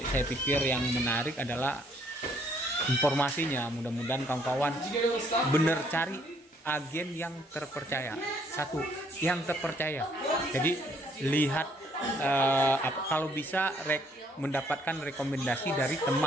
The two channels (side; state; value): both; normal; correlation 0.66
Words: saya pikir yang menarik adalah informasinya. Mudah-mudahan kawan-kawan bener cari agen yang terpercaya. Satu, yang terpercaya. Jadi lihat kalau bisa mendapatkan rekomendasi dari